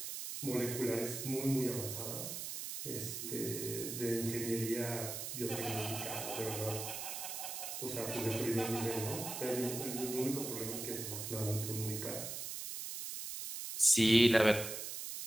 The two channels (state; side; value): noise; right; hiss, 6 dB below the sound